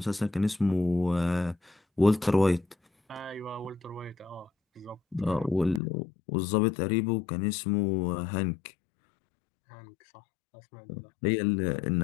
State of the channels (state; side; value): drops out; right; at 5.8 s